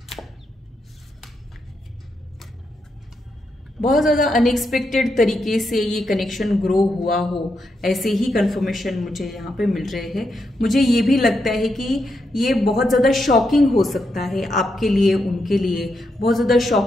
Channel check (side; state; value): both; normal; correlation 0.82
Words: बहुत ज़्यादा अनएक्सपेक्टेड तरीके से ये कनेक्शन ग्रो हुआ हो, ऐसे ही कंफर्मेशन मुझे यहाँ पे मिल रहे हैं। मुझे ये भी लगता है कि ये बहुत ज़्यादा शॉकिंग हो सकता है आपके लिए, उनके लिए बहुत ज़्यादा